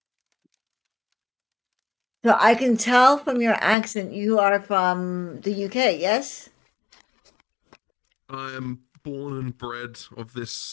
So I can tell from your accent you are from the UK, yes? I am born and bred of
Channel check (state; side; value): drops out; right; at 3.8 s